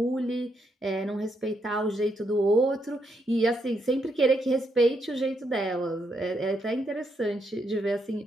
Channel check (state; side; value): normal; both; correlation 0.78